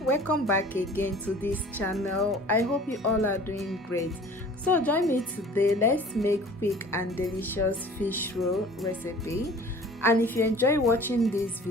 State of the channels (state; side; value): normal; both; correlation 0.46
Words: welcome back again to this channel. I hope you all are doing great. So join me today. Let's make quick and delicious fish roll recipe. And if you enjoy watching this